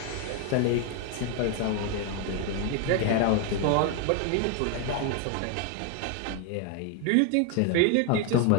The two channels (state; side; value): different; both; correlation 0.01